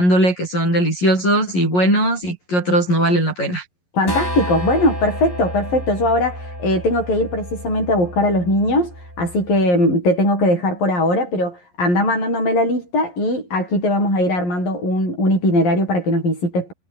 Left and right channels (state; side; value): late; right; 11 ms